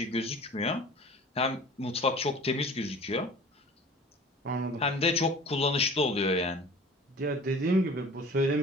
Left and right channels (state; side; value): normal; both; correlation 0.43